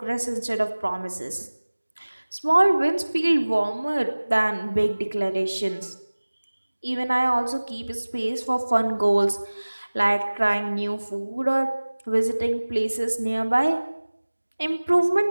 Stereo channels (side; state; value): both; inverted; correlation -1.00